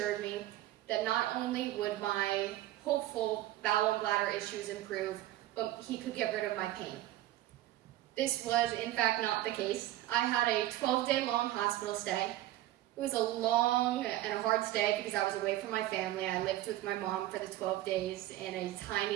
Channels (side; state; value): left; quieter; 15.1 dB